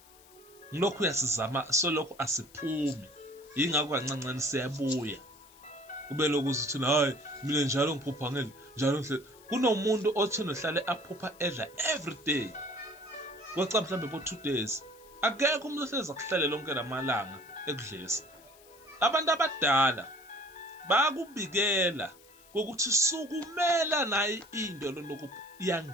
Ngilokhu uyasizama solokhu asiphumi, ingakho kancancane siyabuya. Kube lokuthi uthi hayi mina njalo ngiphupha ngeli njalo nhle. Kunomuntu othi nohlale aphupha edla every day, kweca mhlambe bo 2 days. Akekho umuntu ohlezi akuhlale lonke lamalanga ekudlisa. Abantu abadala bayakubikela ukuthi sukumela naye into lokhu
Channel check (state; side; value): noise; left; hiss, 25 dB below the sound